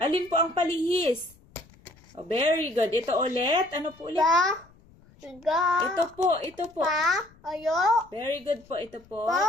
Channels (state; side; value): noise; left; rumble, 27 dB below the sound